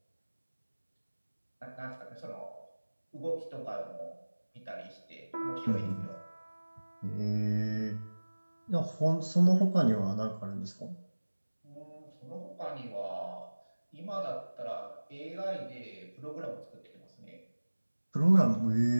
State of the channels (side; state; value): both; inverted; correlation -1.00